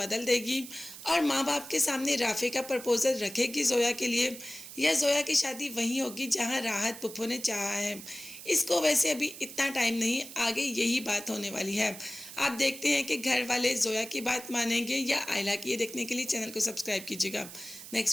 देगी और माँ बाप के सामने राफे का प्रपोजल रखेगी जोया के लिए, या जोया की शादी वहीं होगी जहाँ राहत पुप्पो ने चाहा है। इसको वैसे अभी इतना टाइम नहीं, आगे यही बात होने वाली है। आप देखते हैं कि घर वाले जोया की बात मानेंगे या आयला की। ये देखने के लिए चैनल को सब्सक्राइब कीजिएगा।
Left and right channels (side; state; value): right; noise; hiss, 13 dB below the sound